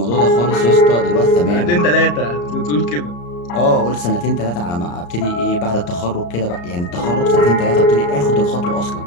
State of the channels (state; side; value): late; right; 34 ms